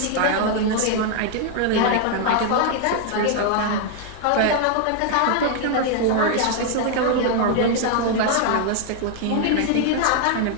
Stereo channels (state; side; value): different; both; correlation 0.00